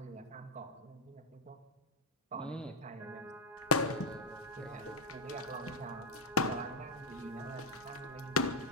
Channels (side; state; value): both; normal; correlation -0.01